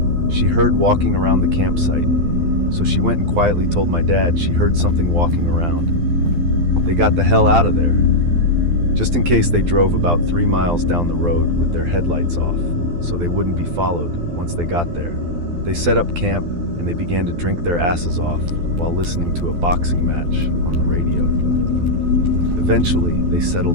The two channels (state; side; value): late; left; 12 ms